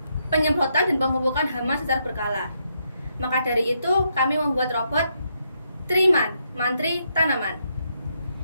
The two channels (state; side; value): inverted; both; correlation -0.78